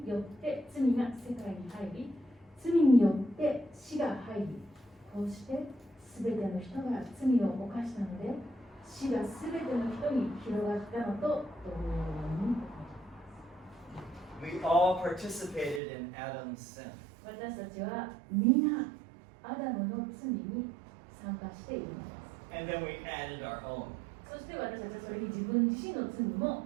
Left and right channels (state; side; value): drops out; left; at 15.8 s